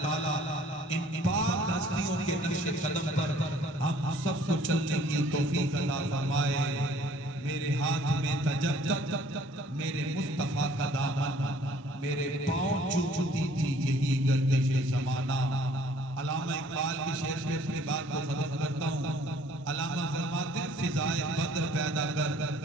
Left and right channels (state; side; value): normal; both; correlation 0.57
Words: تعالیٰ ان پاک ہستیوں کے نقش قدم پر ہم سب کو چلنے کی توفیق عطا فرمائے. میرے ہاتھ میں تجدد میرے مصطفیٰ کا دامن، میرے پاؤں چومتی تھی یہی گردش زمانہ. علامہ اقبال کی شعر پہ اپنی بات کو ختم کرتا ہوں. علامہ فرماتے ہیں فضائے بدر پیدا کر